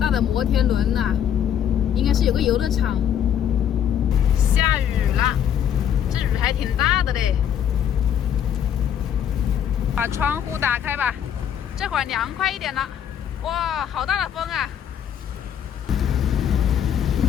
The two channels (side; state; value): right; quieter; 9.3 dB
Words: 的摩天轮呐，应该是有个游乐场。下雨了，这雨还挺大的嘞。把窗户打开吧，这会儿凉快一点了。哇，好大的风啊！